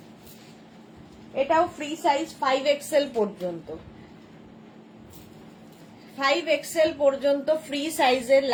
এটাও ফ্রি সাইজ 5XL পর্যন্ত, 5XL পর্যন্ত ফ্রি সাইজের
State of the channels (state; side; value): identical; both; correlation 1.00